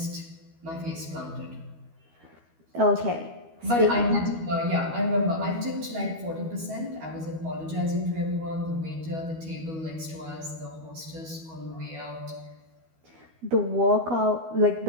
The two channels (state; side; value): late; left; 12 ms